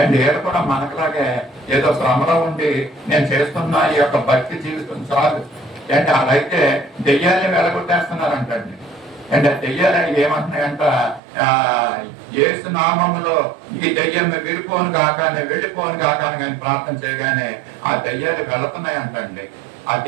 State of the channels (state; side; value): drops out; left; at 11.2 s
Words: అండ్ ఏడు కూడా మనకులాగే ఏదో భ్రమలో ఉండి నేను చేస్తున్నా ఈ యొక్క భక్తి జీవితం చాలు అంటే అలాగైతే దెయ్యాలని వెళ్ళగొట్టేస్తున్నారంటండి. అంటే దెయ్యాలని ఏమంటున్నాయంట, యేసు నామములో ఈ దెయ్యం విడిపోను కాకానే వెళ్ళిపోను కాకాని కానీ ప్రార్థన చేయగానే ఆ దెయ్యాలు వెళుతున్నాయి అంటండి. ఆ